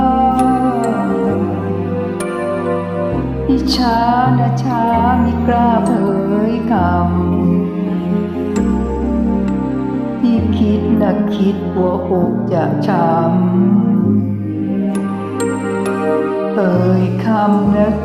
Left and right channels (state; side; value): identical; both; correlation 1.00